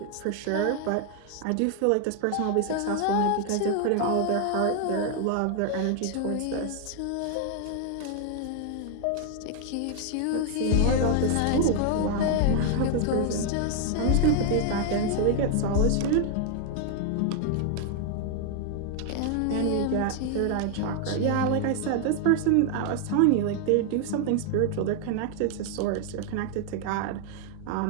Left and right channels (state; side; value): different; both; correlation 0.00